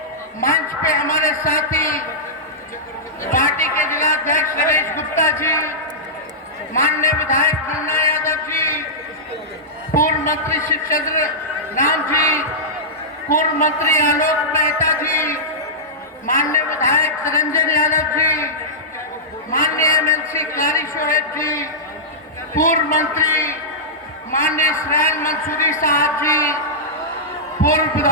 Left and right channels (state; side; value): normal; both; correlation -0.13